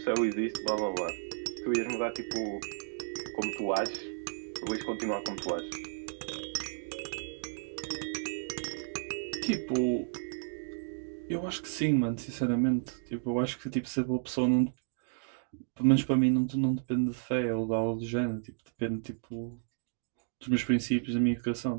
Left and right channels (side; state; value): left; silent; digital silence